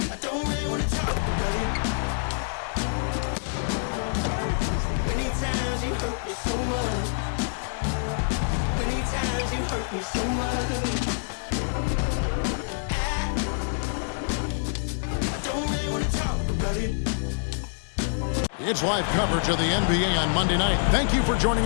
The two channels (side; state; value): right; silent; digital silence